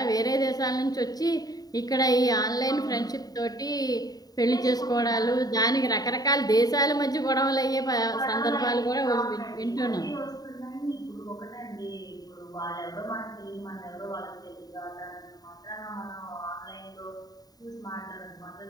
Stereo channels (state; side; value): late; right; 0.18 ms